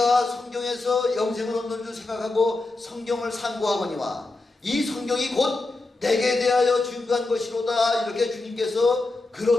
성경에서 영생을 얻는 줄 생각하고 성경을 상고하거니와 이 성경이 곧 내게 대하여 증거한 것이로다. 이렇게 주님께서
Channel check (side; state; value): right; quieter; 3.2 dB